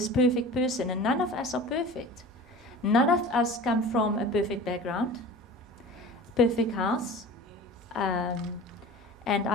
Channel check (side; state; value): both; normal; correlation 0.38